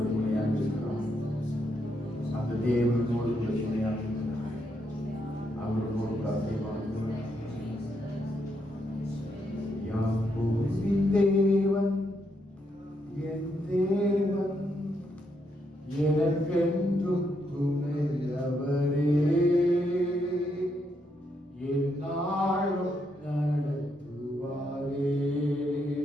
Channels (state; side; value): normal; both; correlation 0.78